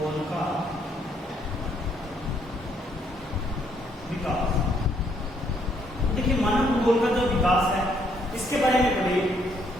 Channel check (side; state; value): both; normal; correlation 0.70